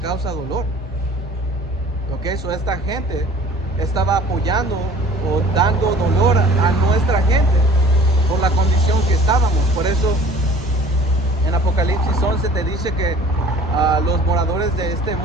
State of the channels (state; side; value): normal; both; correlation 0.49